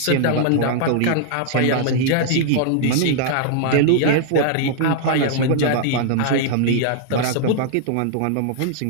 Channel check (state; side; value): different; both; correlation -0.01